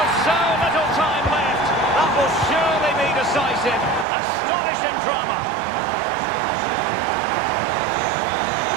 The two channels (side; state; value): left; drops out; at 4.0 s